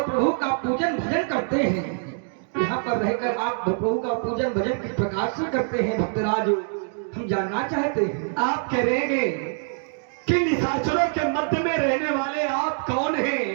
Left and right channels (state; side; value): silent; left; 62 dB below the other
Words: प्रभु का पूजन भजन करते हैं। यहाँ पर रहकर आप प्रभु का पूजन भजन किस प्रकार से करते हैं भक्तराज, हम जानना चाहते हैं। आप कह रहे हैं कि निशाचरों के मध्य में रहने वाले आप कौन